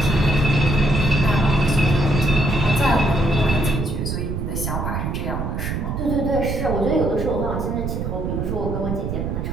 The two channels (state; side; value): noise; right; rumble, 3 dB below the sound